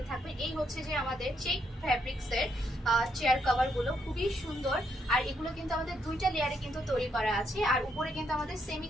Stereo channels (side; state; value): both; normal; correlation 0.76